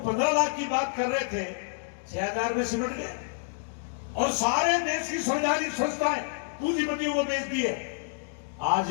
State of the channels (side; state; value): right; silent; digital silence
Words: लाख की बात कर रहे थे 6,000 में सिमट गए, और सारे देश की संवैधानिक संस्थाएं पूंजीपतियों को बेच दिए।